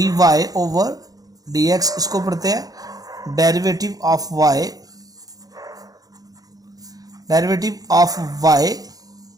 y over d x, इसको पढ़ते हैं derivative of y, derivative of y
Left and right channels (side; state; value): left; late; 0.18 ms